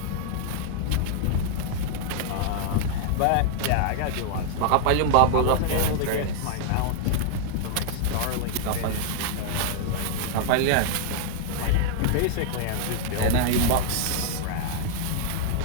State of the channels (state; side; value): different; both; correlation -0.01